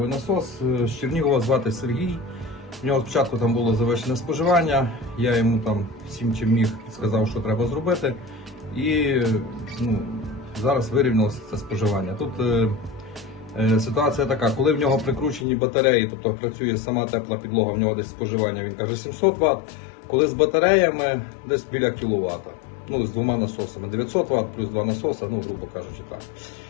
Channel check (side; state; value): right; drops out; at 15.5 s